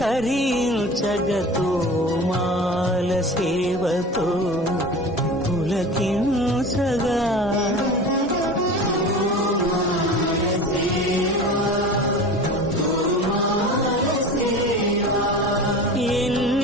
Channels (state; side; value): normal; both; correlation 0.35